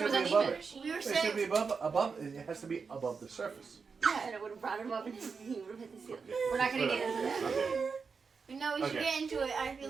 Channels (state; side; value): quieter; left; 5.3 dB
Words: was be above uneven. it. We were It should saying be above. It has to be above the surface. Yeah, and it would have brought him up and he would have hit the ceiling. We're not going to get into that. Okay. no, we should Okay. get into it. I feel